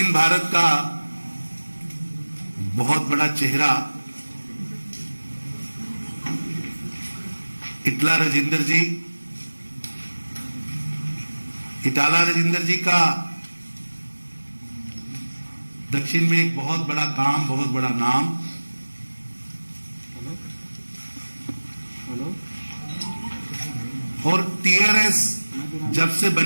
भारत का बहुत बड़ा चेहरा इटाला राजेंद्र जी का दक्षिण में एक बहुत बड़ा काम, बहुत बड़ा नाम। और टीआरएस जब से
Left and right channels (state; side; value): inverted; both; correlation -1.00